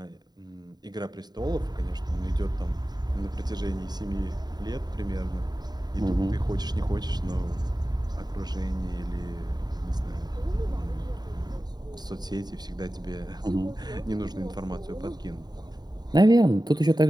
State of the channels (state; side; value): late; left; 0.20 ms